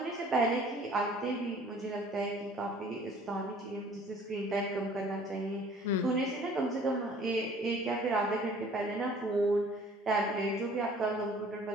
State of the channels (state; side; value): normal; both; correlation 0.53